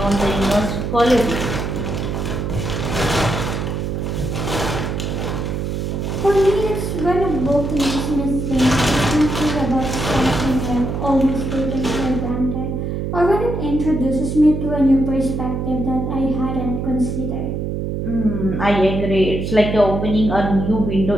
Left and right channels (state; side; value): noise; right; hum, 2 dB below the sound